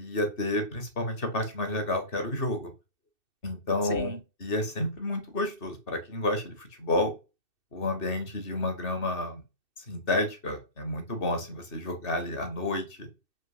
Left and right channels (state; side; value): late; right; 2.6 ms